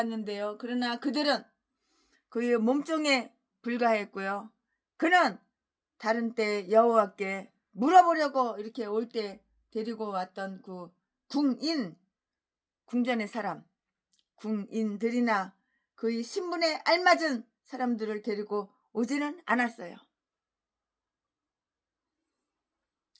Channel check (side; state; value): both; identical; correlation 1.00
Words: 그러나 그들은 그의 몸종에 불과했고요. 그는 다른 때 여호와께 물어보려고 이렇게 올 때 데리고 왔던 그 궁전의 사람, 궁인들이나 그의 신분에 알맞은 사람들을 데리고 오지는 않았어요.